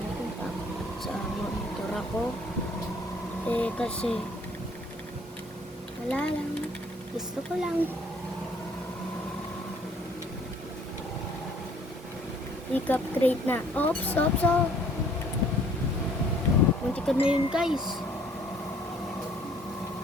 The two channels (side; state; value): both; normal; correlation 0.59